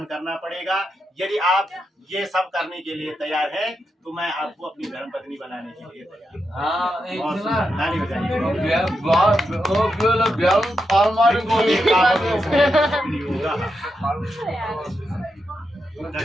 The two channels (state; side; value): normal; both; correlation 0.85